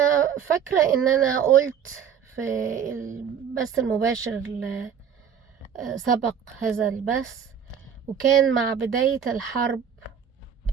فاكرة إن أنا قلت في البث المباشر اللي سبق هذا البث، وكان مع بداية الحرب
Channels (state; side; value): quieter; left; 7.9 dB